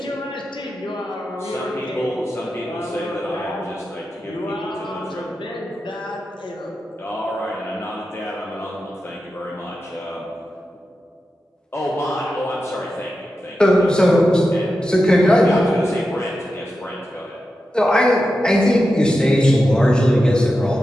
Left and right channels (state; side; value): normal; both; correlation 0.90